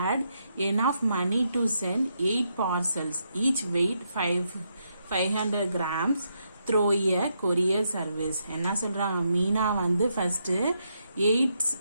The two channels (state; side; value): inverted; both; correlation -0.79